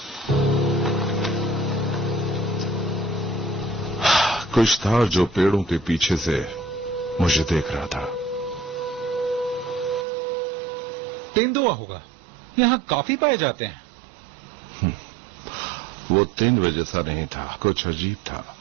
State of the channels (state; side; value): drops out; left; at 10.1 s